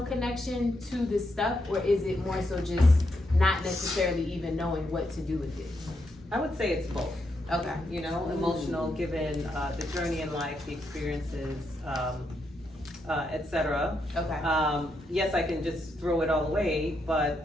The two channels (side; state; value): both; normal; correlation 0.81